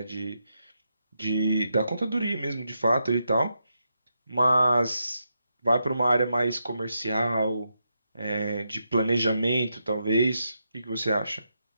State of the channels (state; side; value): inverted; both; correlation -0.84